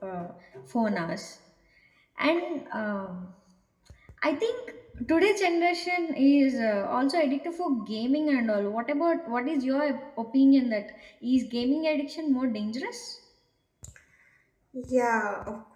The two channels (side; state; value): both; identical; correlation 1.00